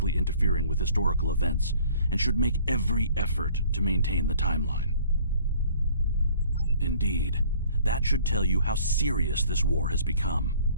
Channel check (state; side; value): inverted; both; correlation -0.54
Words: interfering with historical events and should make every effort to maintain the timeline. Indeed, that should tell you how serious this war has become.